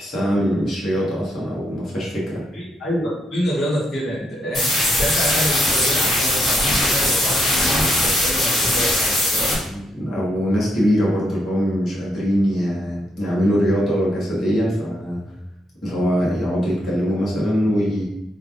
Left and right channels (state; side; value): normal; both; correlation 0.78